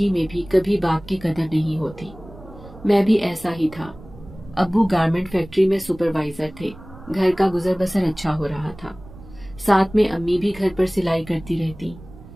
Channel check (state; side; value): noise; right; rumble, 18 dB below the sound